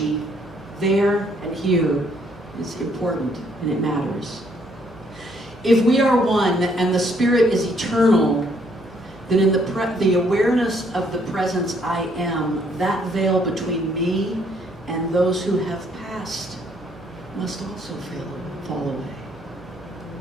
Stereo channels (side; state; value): both; normal; correlation 0.68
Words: there and here is important and it matters. If we are one and the Spirit is eternal, then in the awareness of the presence I am, that veil between me and those who have passed must also fall away.